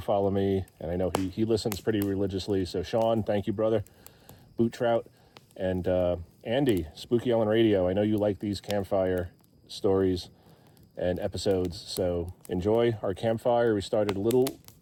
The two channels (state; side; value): identical; both; correlation 1.00